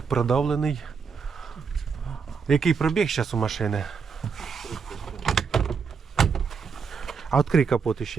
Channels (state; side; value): quieter; left; 5.8 dB